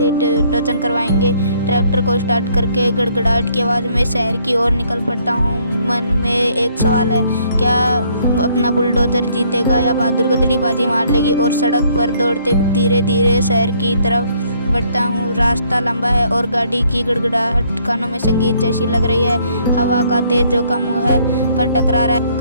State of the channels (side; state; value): both; inverted; correlation -0.65